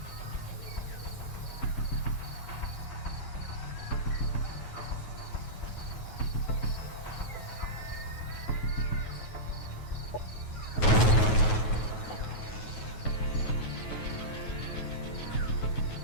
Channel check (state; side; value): late; right; 9.3 ms